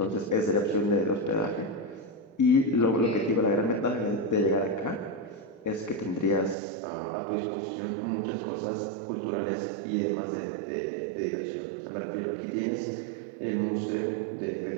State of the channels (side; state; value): left; drops out; at 6.6 s